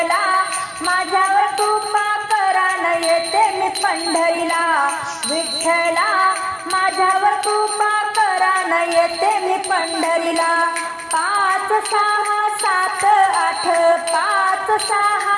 माझ्यावर कृपा करा न येते मी पंढरीला. विठ्ठला माझ्यावर कृपा करा न येते मी पंढरीला. 5 6 7 8, 5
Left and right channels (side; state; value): both; identical; correlation 1.00